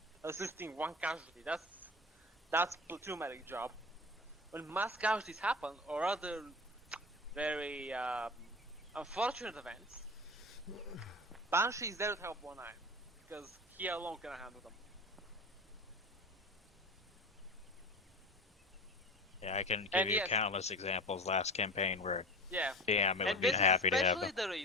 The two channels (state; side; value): normal; both; correlation 0.31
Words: assisting one casualty. That's platoon medic job. When mass casualties happen or other very unfortunate events, Banshee is there to help one eye because he alone can handle them. Yeah, I can give And you yes. countless examples last campaign where, Yeah. damn, it And would be this happy is to have especially them. the